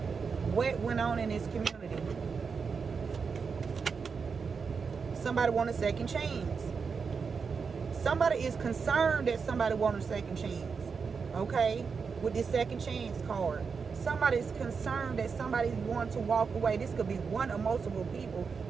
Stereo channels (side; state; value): left; quieter; 5.5 dB